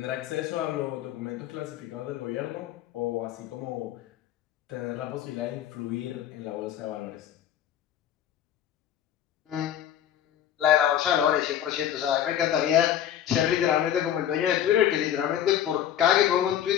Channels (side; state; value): right; quieter; 10.6 dB